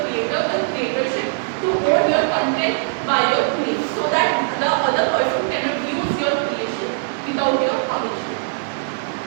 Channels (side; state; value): left; silent; digital silence